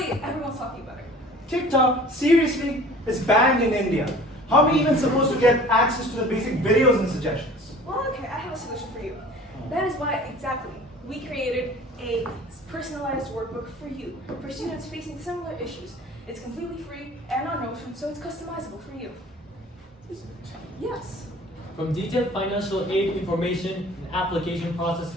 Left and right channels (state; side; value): normal; both; correlation 0.46